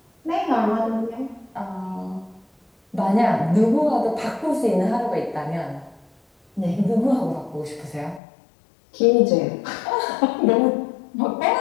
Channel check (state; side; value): drops out; right; at 8.2 s